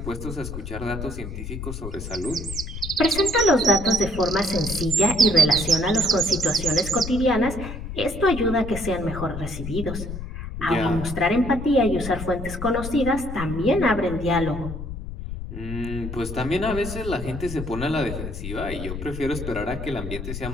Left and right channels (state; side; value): noise; left; rumble, 7 dB below the sound